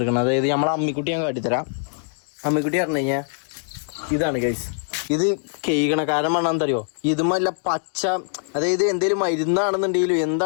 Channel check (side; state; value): right; silent; digital silence